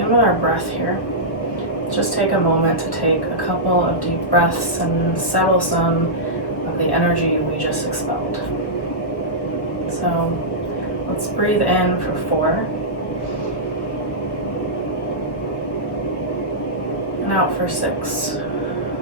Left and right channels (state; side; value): late; right; 1.1 ms